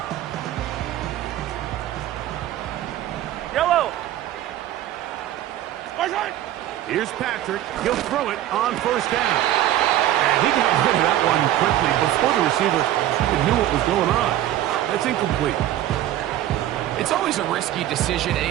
Yellow. Return. Here's Patrick. He'll throw it on first down. And he got rid of that one quickly before the receiver knew what was going on. That's incomplete. It's always a risky decision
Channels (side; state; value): left; quieter; 13.2 dB